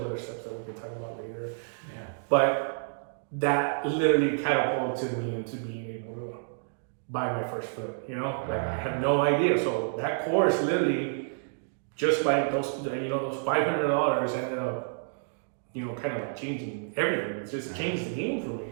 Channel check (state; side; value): silent; left; digital silence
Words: other steps that we can talk about later. But that literally catapulted me into being able to buy my first flip, you know? Like, I had no idea. So that course literally, just by those, you know, those $500 ended up, you know, kind of like changing everything. It's just changed the game for me,